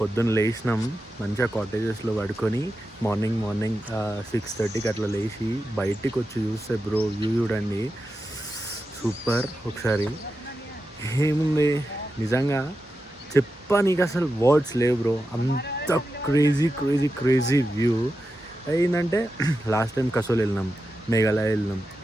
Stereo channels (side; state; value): both; normal; correlation 0.90